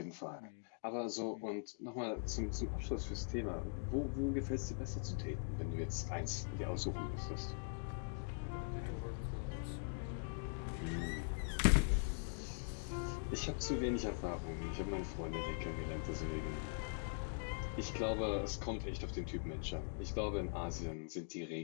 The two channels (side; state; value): right; silent; digital silence